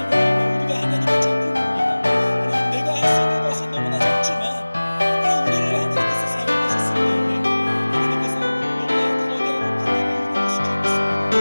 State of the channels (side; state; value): both; inverted; correlation -1.00